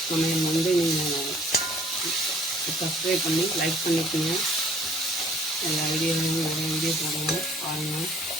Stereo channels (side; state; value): both; normal; correlation 0.57